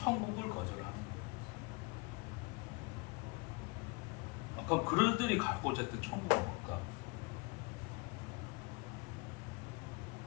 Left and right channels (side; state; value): right; quieter; 28.3 dB